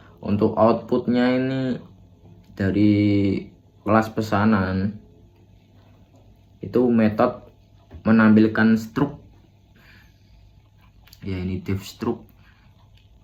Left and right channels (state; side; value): identical; both; correlation 1.00